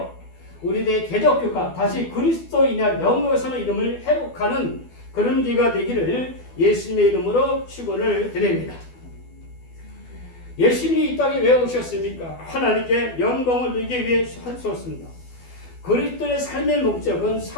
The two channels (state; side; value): late; right; 12 ms